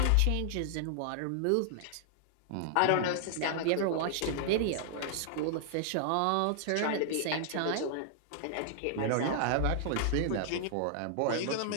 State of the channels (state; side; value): different; both; correlation -0.01